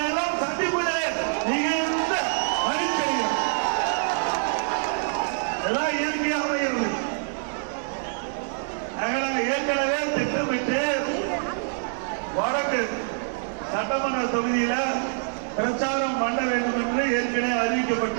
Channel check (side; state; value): left; silent; 61 dB below the other